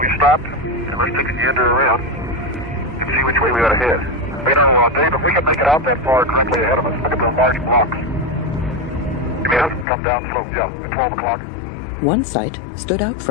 stopped, and let's take a gander around and see which way we ought to head. It's been on a long day, but we can make it out that far directly ahead of us. Look at those large blocks. You mean us? Come down slope, yeah, at 12 o'clock. One sight stood out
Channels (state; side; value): drops out; right; at 9.9 s